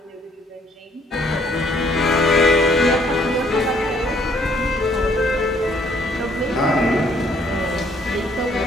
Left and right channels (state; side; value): normal; both; correlation 0.64